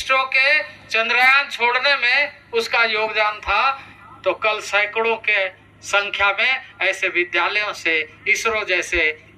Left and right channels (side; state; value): both; identical; correlation 1.00